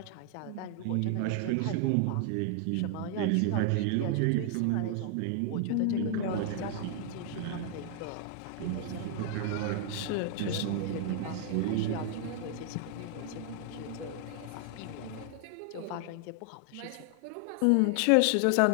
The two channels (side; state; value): both; different; correlation 0.00